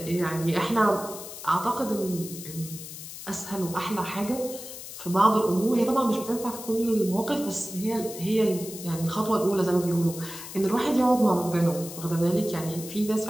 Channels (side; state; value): left; noise; hiss, 12 dB below the sound